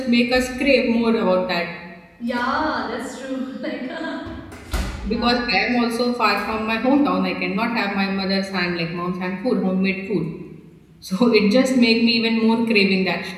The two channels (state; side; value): identical; both; correlation 1.00